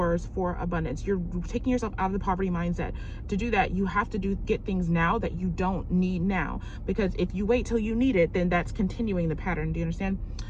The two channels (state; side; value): identical; both; correlation 1.00